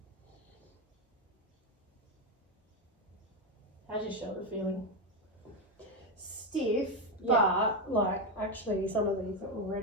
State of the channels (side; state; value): both; normal; correlation 0.08